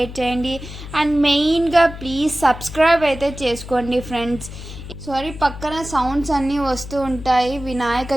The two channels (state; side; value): noise; left; hum, 12 dB below the sound